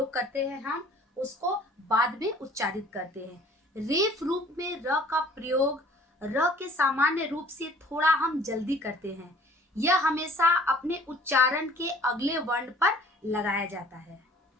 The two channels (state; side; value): normal; both; correlation 0.52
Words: करते हैं हम उसको बाद में उच्चारित करते हैं। रेफ रूप में र का प्रयोग र के सामान्य रूप से थोड़ा हम जल्दी करते हैं। यह हमेशा अपने उच्चारण के अगले वर्ण पर लगाया जाता है।